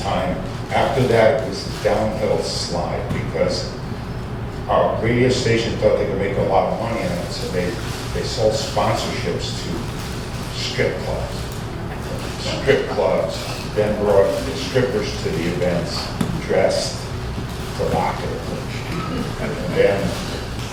After that, it was a downhill slide because our radio station thought they could make a lot of money on it, so they sold sponsorships to strip clubs. Strip clubs then brought the strippers to the events dressed provocatively. And then,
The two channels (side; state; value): both; identical; correlation 1.00